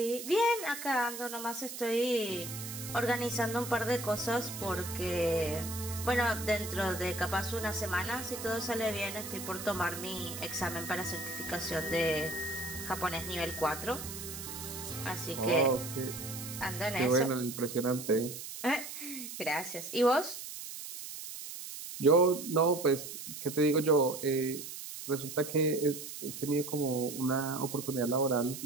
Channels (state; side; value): noise; right; hiss, 9 dB below the sound